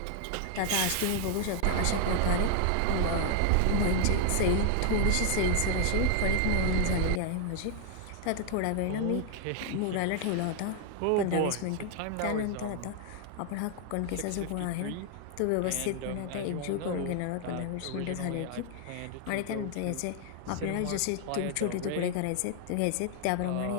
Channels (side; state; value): both; different; correlation 0.00